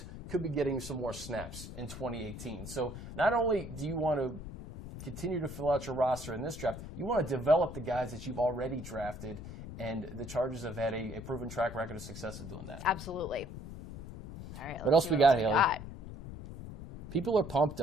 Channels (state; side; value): noise; left; rumble, 11 dB below the sound